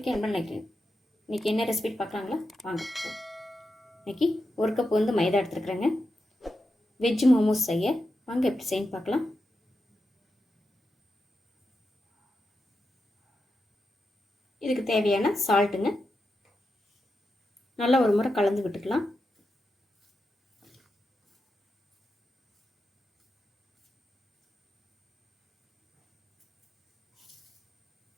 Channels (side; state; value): both; normal; correlation 0.88